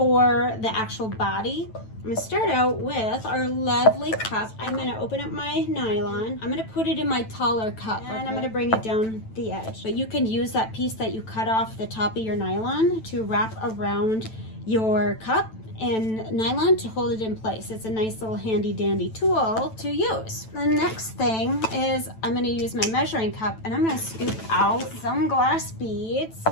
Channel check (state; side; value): late; right; 9.1 ms